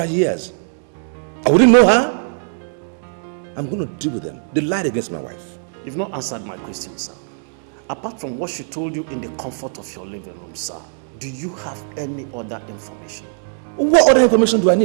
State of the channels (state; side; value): silent; left; digital silence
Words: years. I wouldn't know her. I'm going to deal with them. They lied against my wife. You've not answered my question, sir. Apart from what she told you in the comfort of your living room, sir, do you have any other information? What other information do I